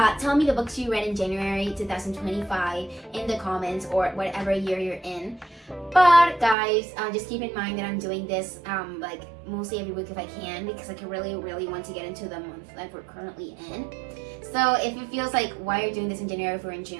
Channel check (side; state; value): left; drops out; at 6.6 s